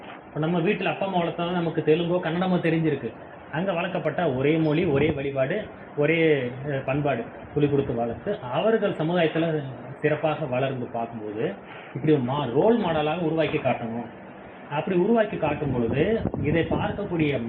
இப்போ நம்ம வீட்டில் அப்பா அம்மா வளர்த்தாலும் நமக்கு தெலுங்கோ கன்னடமோ தெரிஞ்சிருக்கு. அங்கே வளர்க்கப்பட்ட ஒரே மொழி, ஒரே வழிபாடு, ஒரே பண்பாடு துளி கொடுத்து வளர்த்து அவர்கள் சமுதாயத்தில் சிறப்பாக வளர்ந்து பார்க்கும்போது இப்படி ரோல் மாடலாக உருவாக்கி காட்டணும். அப்படி உருவாக்கி காட்டும் பொழுது இதை பார்க்கக்கூடிய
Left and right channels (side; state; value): both; identical; correlation 1.00